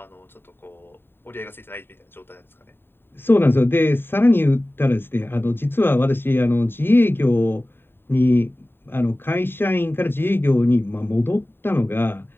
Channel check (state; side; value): late; right; 0.11 ms